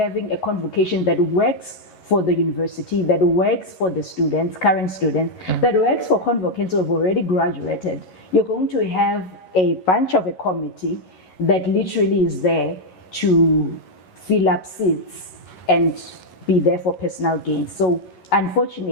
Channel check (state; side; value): late; right; 11 ms